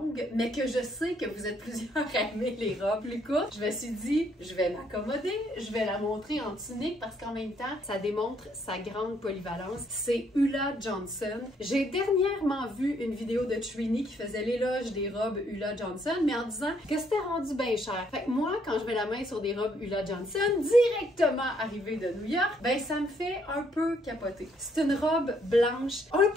mais que je sais que vous êtes plusieurs à aimer les robes plus courtes, je me suis dit, je vais m'accommoder, je vais la montrer en tunique parce qu'en même temps, ça démontre sa grande polyvalence. C'est Ulla Johnson. J'ai dernièrement vu une vidéo de Trini qui faisait l'éloge des robes Ulla Johnson, mais en disant que c'était rendu bien cher. Fait que moi, quand je mets la main sur des robes Ulla Johnson, directement arrivée de New York, ben ça me fait un peu capoter. C'est une robe blanche, un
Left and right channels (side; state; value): both; normal; correlation 0.69